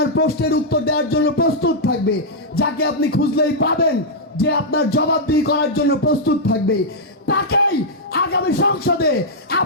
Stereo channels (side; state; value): both; normal; correlation -0.07